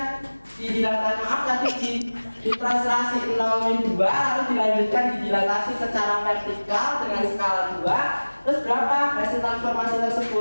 di dilatasi di translasi 0,2, lalu dilanjutkan di dilatasi secara vertikal dengan skala 2. Terus berapa hasil transformasi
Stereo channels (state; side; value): inverted; both; correlation -1.00